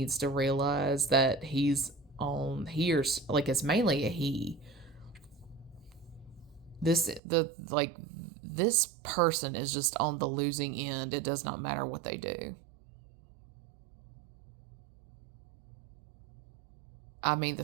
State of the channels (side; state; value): left; drops out; at 7.2 s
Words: to realize that he's on here's like it's mainly a he. This person is just on the losing end. It does not matter what they do. I mean,